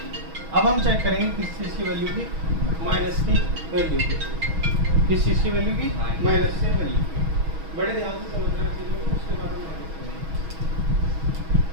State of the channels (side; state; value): left; late; 6.2 ms